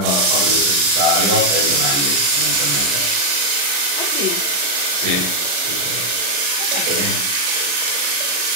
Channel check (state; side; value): late; left; 35 ms